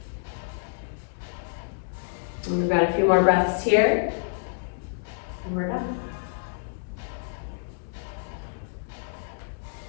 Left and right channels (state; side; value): silent; right; digital silence